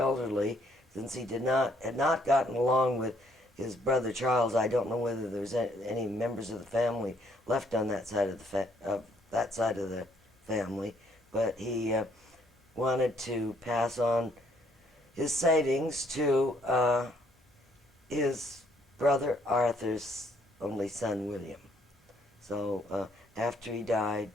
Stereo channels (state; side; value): normal; both; correlation 0.66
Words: since he had not gotten along with his brother Charles, I don't know whether there's any members of the family left on that side of the family, but he wanted to pass on his savings to his brother Arthur's only son, William. So after he